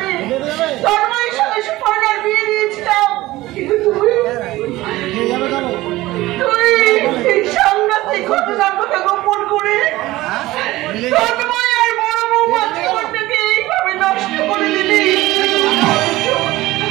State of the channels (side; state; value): left; quieter; 17.9 dB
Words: তন্ময়ের সঙ্গে সুপর্ণার বিয়ে দিয়েছিলাম, কিন্তু তুই এই সাংঘাতিক ঘটনার কথা গোপন করে তন্ময় আর বড় বৌমার জীবনটাকে এইভাবে নষ্ট করে দিলি।